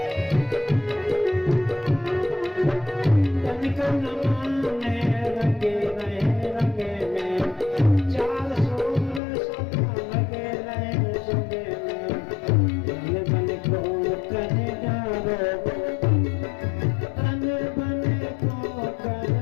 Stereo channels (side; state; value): right; drops out; at 9.2 s